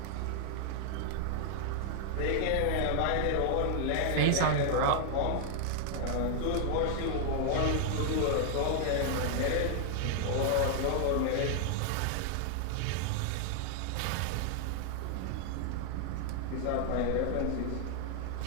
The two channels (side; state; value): both; different; correlation 0.00